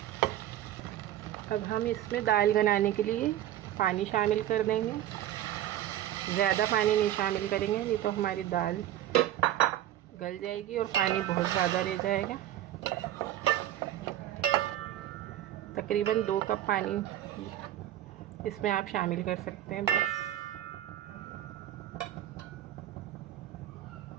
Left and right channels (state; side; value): quieter; left; 12.7 dB